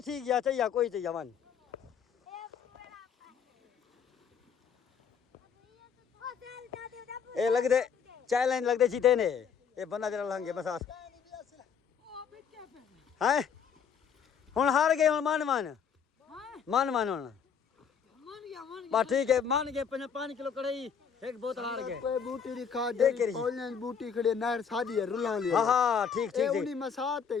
ठीक है चाहिए कोई चाहिए वन ए लगदे चैलेंज लगदे जीते ने ये बंदा जरा लंगे मसाद ओ बिके पे हैं हुन हार गए हुन मान मान हां मान मान हुन मन गया बस ठीक है मान गए 5 किलो कढ़ाई एक बोतल हार गए कोई बूटी दी खा देख के दे ऑनलाइन बूटी खड़े नहर सादी है रुला ले हां हां ठीक ठीक उनी ठीक मसात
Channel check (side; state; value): right; quieter; 7.0 dB